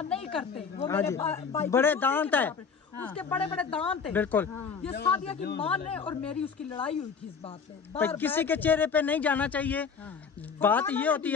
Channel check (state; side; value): quieter; right; 6.0 dB